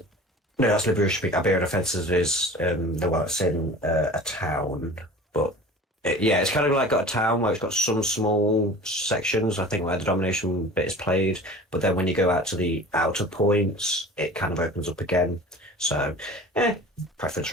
No, that's Liberation Peak. Iberian Offensive is the one that's in a town, but yeah, it's kind of like got a town where it's got some small sections, I think, where the domination bit is played. But then when you go out to the outer points, it kind of opens up again. So, preference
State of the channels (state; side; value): normal; both; correlation 0.40